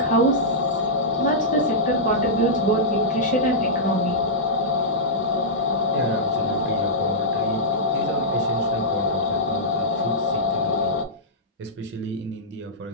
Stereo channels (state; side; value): normal; both; correlation -0.13